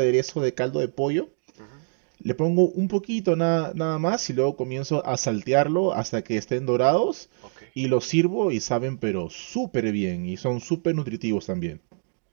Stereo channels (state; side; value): silent; left; digital silence